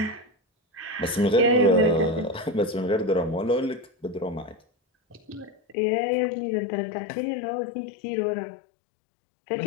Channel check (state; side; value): drops out; right; at 5.8 s